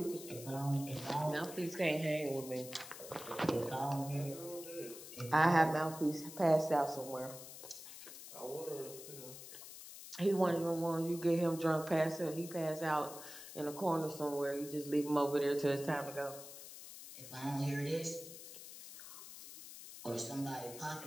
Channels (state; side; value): noise; left; hiss, 13 dB below the sound